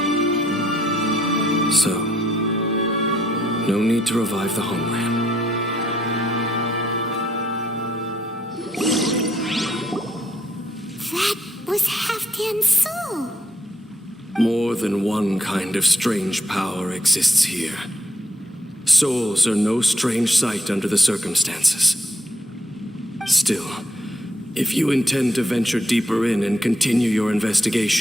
So, no need to revive the homeland. That was Halfdan's soul. More than one kind of strange power exists here. Souls are no strange sight under the circumstances. Still, if you intend to venture deeper in and continue your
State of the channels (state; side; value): normal; both; correlation 0.72